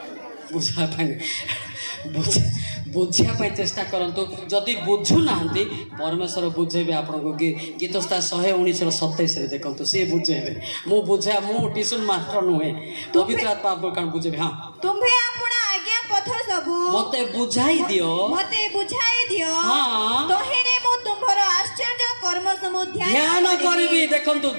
बुझा बुझापी चेष्टा करतु जदि बुझु ना परमेश्वर बुझेबे आपको गीतस्ता 119:27 देखो सी बुझेबे मु बुझा मु ट्यूशन मास्टर नुहे पवित्र आत्मा आपको बुझेबे हाँ तुम्हें अपना आज्ञा पथ सब मते बुझाई दियो हाँ तोहिरे मु तुम्हर आश्चर्य कर्म समूह ध्यान करबी देखंतु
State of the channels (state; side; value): inverted; both; correlation -1.00